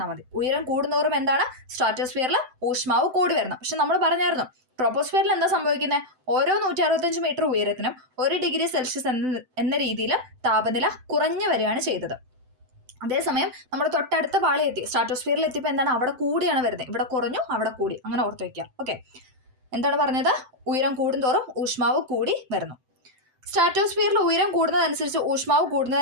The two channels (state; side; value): late; left; 7.8 ms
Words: മതി. ഉയരം കൂടുന്തോറും എന്താണ്? സ്ട്രാറ്റോസ്ഫിയറിൽ ഊഷ്മാവ് കൂടി വരണം. പക്ഷെ നമ്മൾ പറഞ്ഞായിരുന്നു ട്രോപ്പോസ്ഫിയറിൽ എന്താ സംഭവിക്കുന്നത്? ഓരോ 165 മീറ്റർ ഉയരത്തിനും 1 ഡിഗ്രി സെൽഷ്യസ് എന്ന രീതിയിൽ താപനില കുറഞ്ഞു വരികയാണ് ചെയ്തത്. അതേസമയം നമ്മൾ തൊട്ടടുത്ത പാളി എത്തി, സ്ട്രാറ്റോസ്ഫിയറിൽ എത്തിയപ്പോൾ എന്താണ്, അവിടെ കൂടിയാണ് വരുന്നത്, ഇവിടെ കുറഞ്ഞു അവിടെ കൂടി, അങ്ങനെ ഓർത്ത് വയ്ക്കുക. ഓക്കെ, എന്താണ് പറഞ്ഞത്, ഉയരം കൂടുന്തോറും ഊഷ്മാവ് കൂടി വരുന്നു. സ്ട്രാറ്റോസ്ഫിയറിൽ ഉയരം കൂടുന്നതനുസരിച്ച് ഊഷ്മാവ്